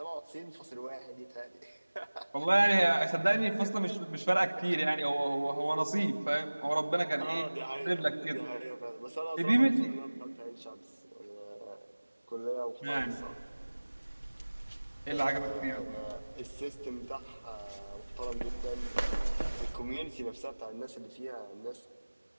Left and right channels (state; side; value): inverted; both; correlation -1.00